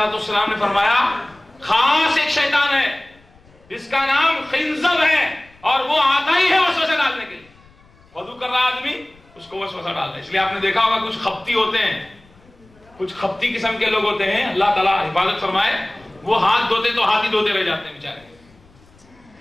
والسلام نے فرمایا خاص ایک شیطان ہے جس کا نام خنزب ہے اور وہ آتا ہی ہے وسوسہ ڈالنے کے لیے. وضو کر رہا آدمی اس کو وسوسہ ڈالتا ہے. اس لیے آپ نے دیکھا ہوگا کچھ خپتی ہوتے ہیں، کچھ خپتی قسم کے لوگ ہوتے ہیں، اللہ تعالیٰ حفاظت فرمائے، وہ ہاتھ دھوتے تو ہاتھ ہی دھوتے رہ جاتے ہیں بیچارے.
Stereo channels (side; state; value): left; noise; rumble, 29 dB below the sound